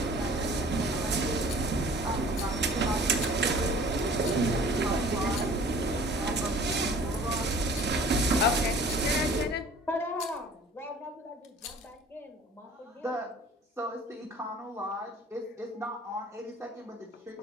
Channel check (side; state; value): both; normal; correlation 0.48